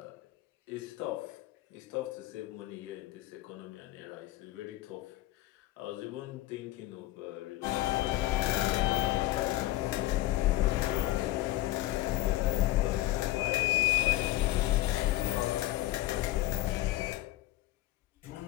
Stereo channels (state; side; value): quieter; right; 16.7 dB